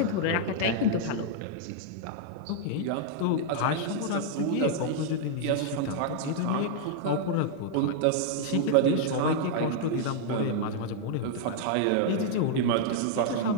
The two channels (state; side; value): different; both; correlation -0.01